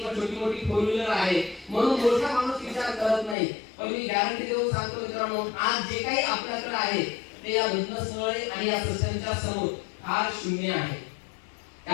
छोटी मोठी फोर व्हीलर आहे, म्हणून मोठा माणूस विचार करत नाही. पण मी गॅरंटी देऊन सांगतो मित्रांनो, आज जे काही आपल्याकडे आहे ते या घटनास्थळी आणि या सत्संगाच्या समोर फार शून्य आहे.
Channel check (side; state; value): right; drops out; at 3.4 s